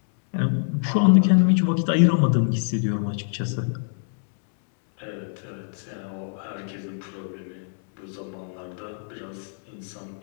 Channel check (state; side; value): silent; right; 62 dB below the other